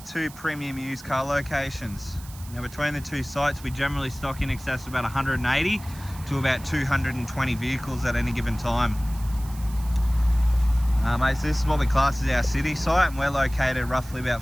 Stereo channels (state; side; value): noise; right; hiss, 19 dB below the sound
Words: two premium used car locations. Now between the two sites we generally stock in excess of about 180 to about 220 vehicles at any given time. Mate, so this is what we class as our city site, and we're located roughly about